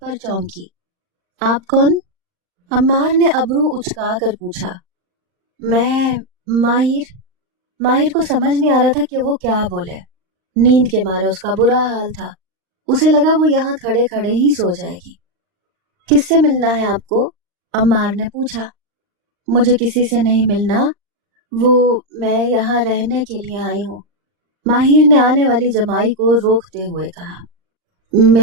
पर चौंकी। आप कौन? अम्मार ने अबरू उचका कर पूछा। मैं माहिर। माहिर को समझ नहीं आ रहा था कि वो क्या बोले। नींद के मारे उसका बुरा हाल था। उसे लगा वो यहाँ खड़े खड़े ही सो जाएगी। किससे मिलना है आपको? अम्मार ने पूछा। मुझे किसी से नहीं मिलना, मैं यहाँ रहने के लिए आई हूँ, माहिर ने आने वाली जमाई को रोकते हुए कहा।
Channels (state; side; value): late; left; 39 ms